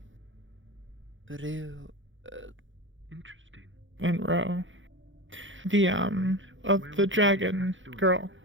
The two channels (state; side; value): late; left; 0.56 ms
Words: Blue. Interesting. and Ro. The of the dragon girl,